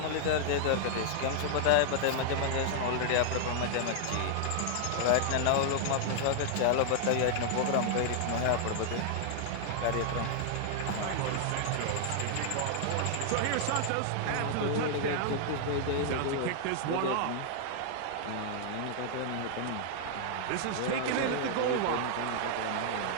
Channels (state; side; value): different; both; correlation 0.00